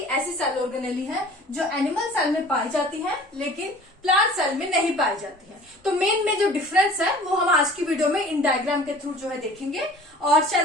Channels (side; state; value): both; normal; correlation 0.46